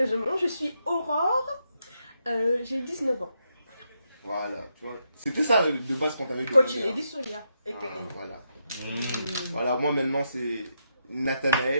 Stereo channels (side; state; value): both; inverted; correlation -0.81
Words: je suis Aurore. J'ai 19 ans. Voilà, tu vois. C'était ça de base qu'on t'avait Coach demandé. Lady Sonia. Voilà. Mmh. Voilà, moi maintenant c'est